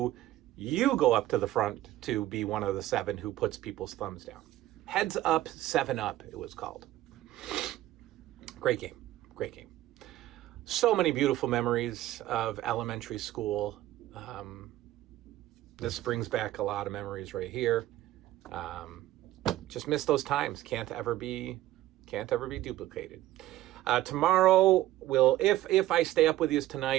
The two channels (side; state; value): left; quieter; 14.9 dB